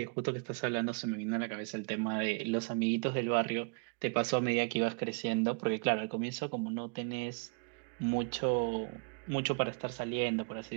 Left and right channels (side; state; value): left; quieter; 34.6 dB